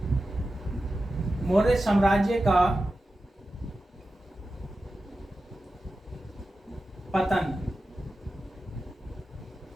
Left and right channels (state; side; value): normal; both; correlation 0.93